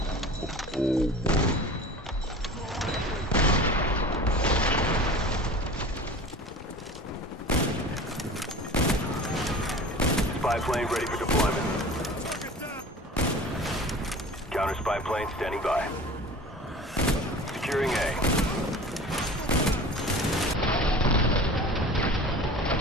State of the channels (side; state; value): both; normal; correlation 0.39